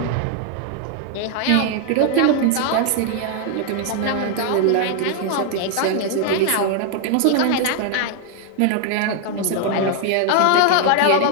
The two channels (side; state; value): both; different; correlation 0.00